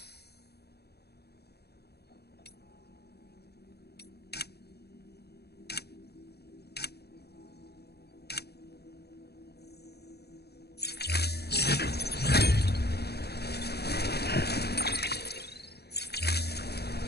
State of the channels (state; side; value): late; right; 0.47 ms